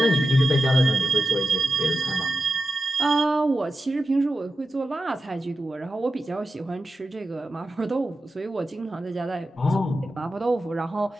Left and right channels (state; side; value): normal; both; correlation 0.90